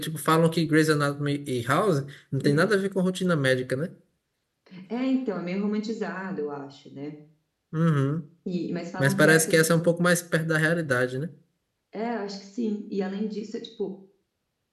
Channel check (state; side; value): identical; both; correlation 1.00